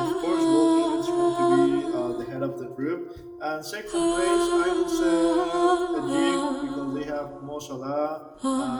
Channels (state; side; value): identical; both; correlation 1.00